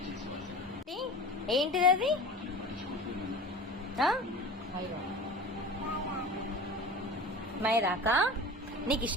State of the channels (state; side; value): normal; both; correlation 0.35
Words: ఏంటిది అది? మైదాకా? నీకు